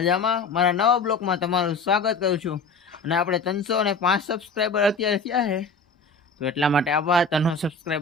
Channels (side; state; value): right; quieter; 4.0 dB